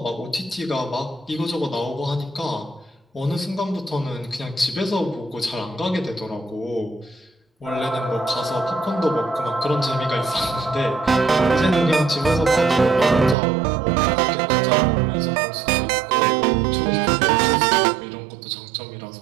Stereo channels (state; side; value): drops out; left; at 13.4 s